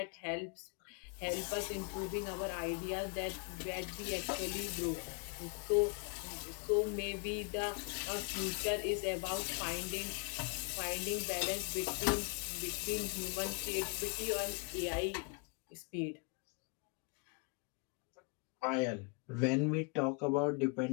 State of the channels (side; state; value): right; quieter; 35.0 dB